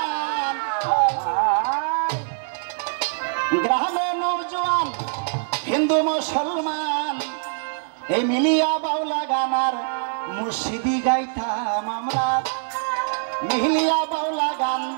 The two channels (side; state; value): left; silent; 61 dB below the other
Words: গ্রামে নৌজওয়ান হিন্দু মুসলমান, এই মিলিয়া বাউলা গানার মুর্শিদি গাইতাম আমরা। মিলিয়া বাউলা গান